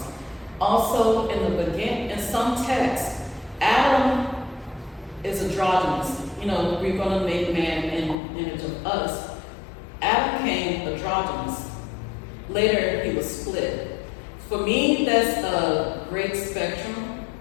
Also, in some texts, Adam is androgynous. We're going to make man in image of us. Adam came androgynous. Later, he was split. For me, that's a great spectrum.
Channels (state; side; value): drops out; right; at 8.2 s